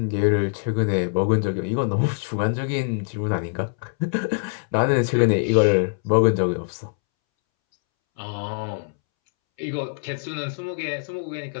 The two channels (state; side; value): silent; right; 63 dB below the other